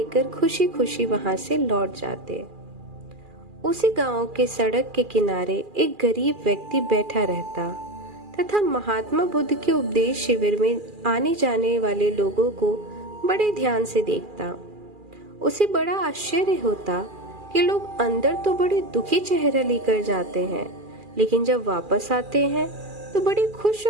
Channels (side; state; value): left; late; 2.4 ms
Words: खुशी खुशी वहां से लौट जाते। उसी गांव के सड़क के किनारे एक गरीब व्यक्ति बैठा रहता तथा महात्मा बुद्ध के उपदेश शिविर में आने जाने वाले लोगों को बड़े ध्यान से देखता। उसे बड़ा आश्चर्य होता कि लोग अंदर तो बड़े दुखी चेहरा लेकर जाते हैं, लेकिन जब वापस आते हैं तो बड़े खुश